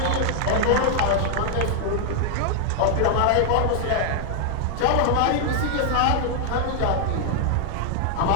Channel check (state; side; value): different; both; correlation 0.00